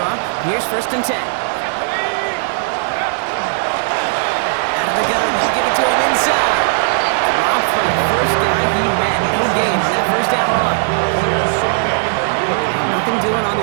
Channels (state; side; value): silent; left; 57 dB below the other